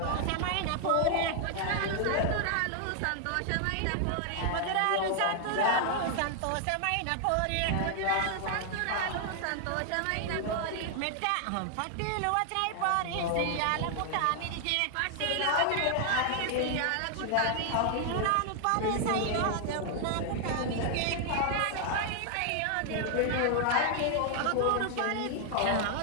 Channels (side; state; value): both; different; correlation 0.00